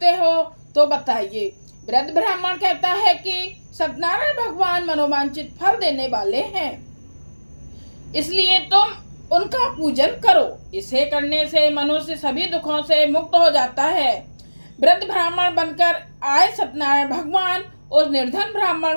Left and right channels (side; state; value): both; inverted; correlation -1.00